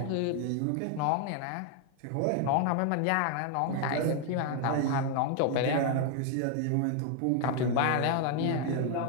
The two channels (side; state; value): both; different; correlation 0.00